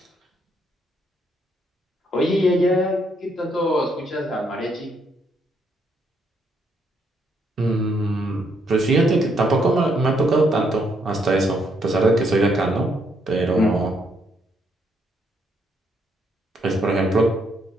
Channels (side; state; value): both; normal; correlation 0.73